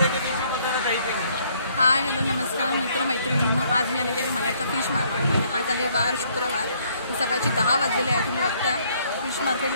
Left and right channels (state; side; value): inverted; both; correlation -0.65